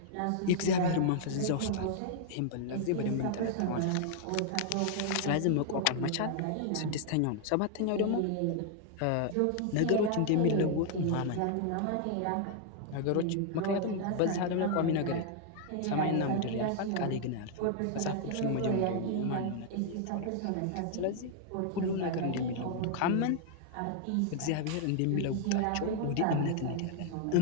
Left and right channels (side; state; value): both; different; correlation 0.00